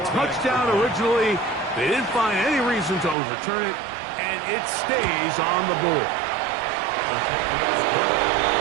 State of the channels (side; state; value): left; drops out; at 3.2 s